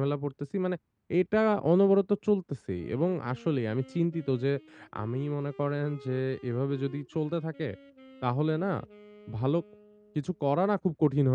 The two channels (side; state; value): both; identical; correlation 1.00